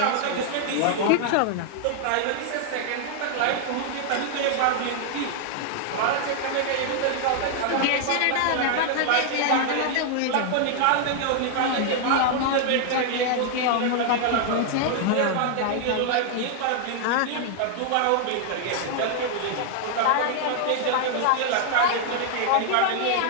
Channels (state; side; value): different; both; correlation 0.00